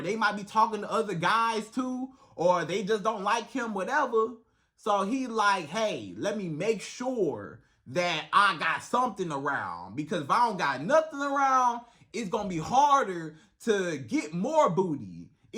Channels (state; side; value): identical; both; correlation 1.00